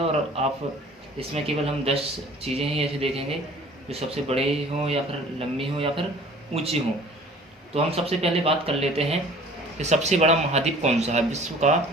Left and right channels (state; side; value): normal; both; correlation 0.49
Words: आप इसमें केवल हम 10 चीज़ें ही ऐसे देखेंगे जो सबसे बड़े हों या फिर लंबी हों या फिर ऊंची हों। तो हम सबसे पहले बात कर लेते हैं कि सबसे बड़ा महाद्वीप कौन सा है। विश्व का